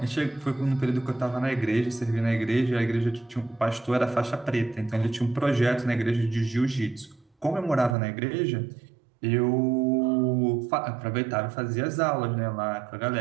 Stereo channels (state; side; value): drops out; left; at 8.0 s